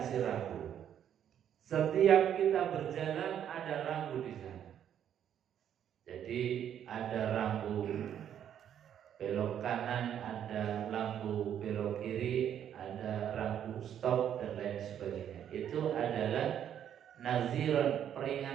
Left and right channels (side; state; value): left; quieter; 9.7 dB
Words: rambu. Setiap kita berjalan ada rambu di sana. Jadi ada rambu belok kanan, ada lampu belok kiri, ada rambu stop dan lain sebagainya. Itu adalah naziran,